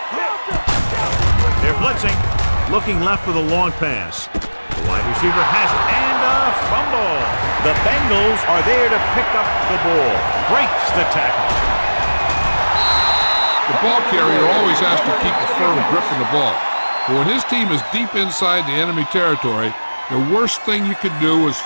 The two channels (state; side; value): inverted; both; correlation -1.00